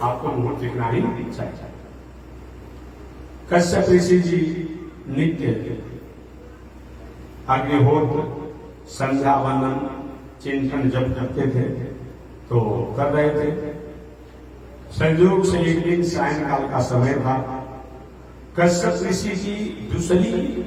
आपको मुहूर्त दिखना ही चाहिए। कश्यप ऋषि जी नित्य अग्निहोत्र संध्या वंदन चिंतन जब करते थे तो कर रहे थे। संयोग से एक दिन सायंकाल का समय था। कश्यप ऋषि की दूसरी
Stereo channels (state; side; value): identical; both; correlation 1.00